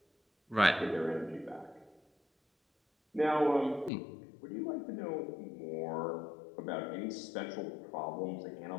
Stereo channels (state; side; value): drops out; right; at 3.9 s